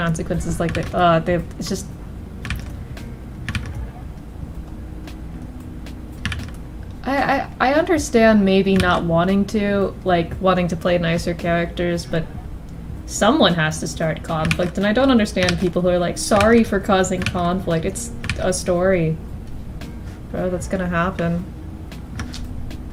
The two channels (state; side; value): identical; both; correlation 1.00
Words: like that, it's just... I understand maybe not wanting to, like, wanting to play nicer characters, but someone has to start conflict, and I don't understand people who are like, sorry for causing conflict, it's a story. Bro, that's gonna happen.